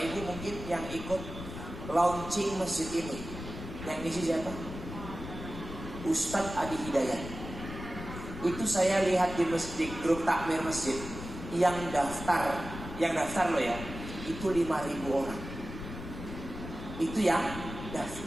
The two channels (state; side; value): noise; left; rumble, 10 dB below the sound